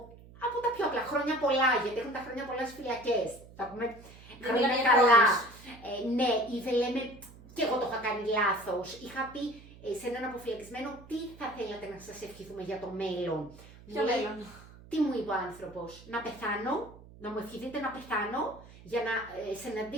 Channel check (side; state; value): right; noise; hum, 20 dB below the sound